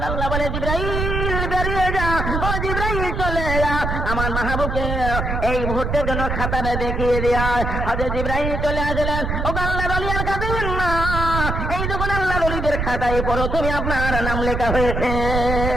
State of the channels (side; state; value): right; noise; rumble, 2 dB below the sound